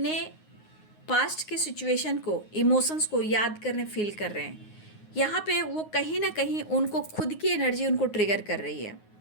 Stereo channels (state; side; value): late; right; 9.5 ms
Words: पास्ट के सिचुएशन को, इमोशंस को याद करने, फील कर रहे हैं। यहाँ पे वो कहीं ना कहीं उनको खुद की एनर्जी उनको ट्रिगर कर रही है,